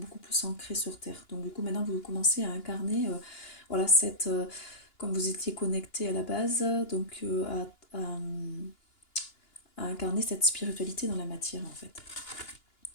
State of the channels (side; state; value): right; late; 2.9 ms